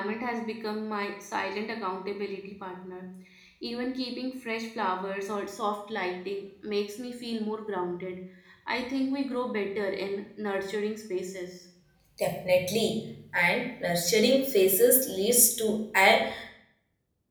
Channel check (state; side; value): identical; both; correlation 1.00